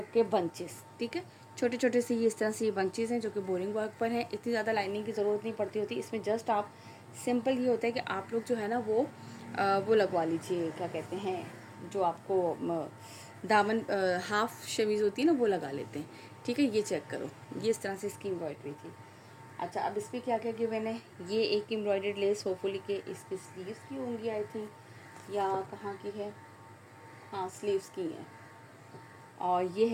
के बंचेस, ठीक है। छोटे छोटे से ये इस तरह से ये बंचेस हैं जो कि बोरिंग वर्क पर हैं। इतनी ज़्यादा लाइनिंग की ज़रूरत नहीं पड़ती होती इसमें। जस्ट आप सिंपल ये होता है कि आप लोग जो है ना वो लगवा लीजिए, क्या कहते हैं, जो आपको दामन हाफ शमीज़ होती है ना वो लगा लेते हैं, ठीक है। ये चेक करो, ये इस तरह से इसकी एम्ब्रॉयडरी थी। अच्छा, अब इस पर क्या क्या गिवन है। ये एक एम्ब्रॉयडर्ड लेस होपफुली के इसकी स्लीव्स की होंगी आई थिंक, या कहाँ की है, हाँ स्लीव्स की है। और ये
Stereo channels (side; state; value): both; identical; correlation 1.00